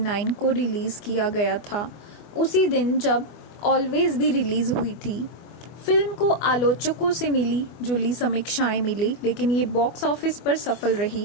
को रिलीज किया गया था, उसी दिन जब ऑलवेज भी रिलीज हुई थी। फिल्म को आलोचकों से मिली जुली समीक्षाएं मिली, लेकिन ये बॉक्स ऑफिस पर सफल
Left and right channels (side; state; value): right; late; 24 ms